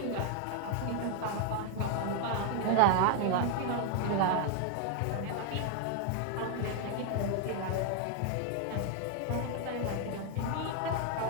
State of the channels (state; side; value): different; both; correlation 0.01